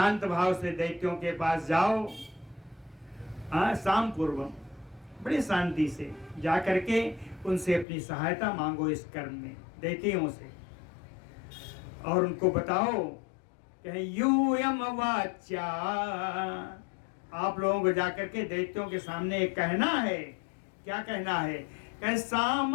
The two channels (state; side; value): drops out; right; at 7.9 s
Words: भाव से दैत्यों के पास जाओ। साम पूर्वम, बड़ी शांति से जा करके उनसे अपनी सहायता मांगो इस कर्म में, दैत्यों से। और उनको बताओ कि यूयम वाच्या, आप लोगों को जाकर के दैत्यों के सामने कहना है। क्या कहना है? कि